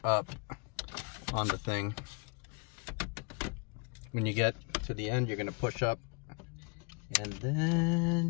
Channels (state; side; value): quieter; right; 33.5 dB